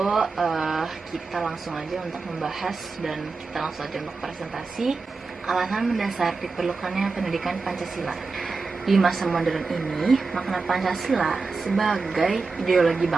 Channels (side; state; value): left; quieter; 4.2 dB